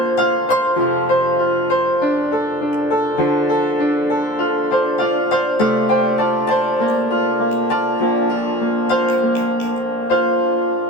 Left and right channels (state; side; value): late; right; 13 ms